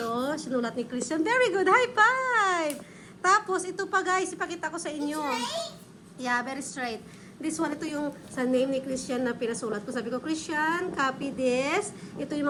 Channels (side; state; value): both; identical; correlation 1.00